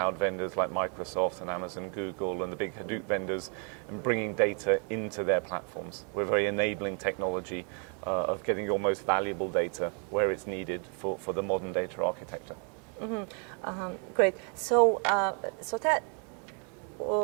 vendors like Microsoft and Amazon, Google, and the big Hadoop vendors, and bringing data into their platforms. We're very enabling technology of getting your most valuable data where it's needed for the modern data architecture. Great. So Ted,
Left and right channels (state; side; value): quieter; left; 39.1 dB